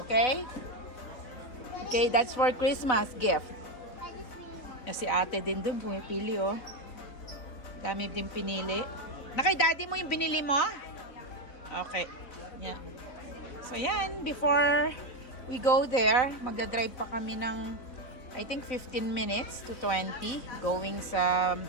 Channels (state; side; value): late; right; 3.9 ms